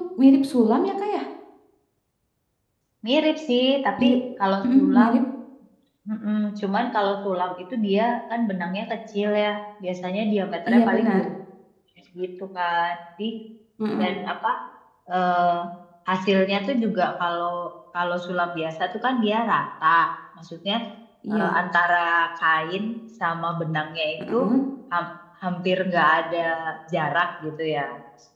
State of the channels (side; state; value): both; identical; correlation 1.00